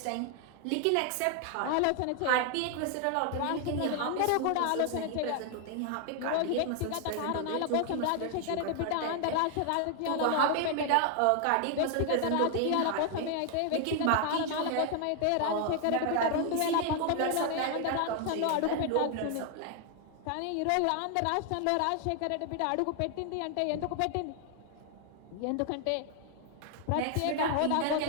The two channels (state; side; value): different; both; correlation 0.00